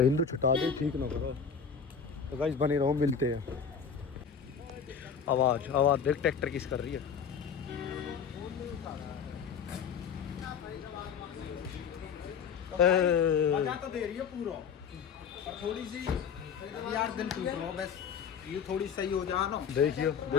हिंदू छुटा दे, ठीक ना करो। तो गाइस बने रहो, मिलते हैं। आवाज आवाज देख, ट्रैक्टर किस कर रही है। मजा तो दे रही है पूरा, और थोड़ी सी यार दिल टूट रहा बस, ये थोड़ी सही हो जा ना। देखियो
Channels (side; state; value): right; quieter; 6.6 dB